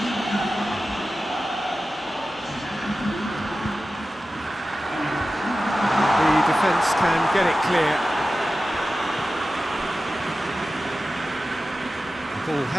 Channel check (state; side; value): normal; both; correlation 0.94